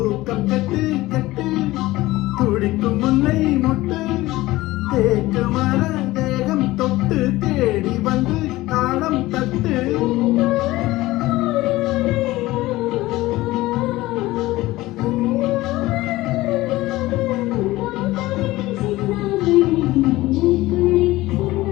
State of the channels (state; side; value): quieter; right; 18.2 dB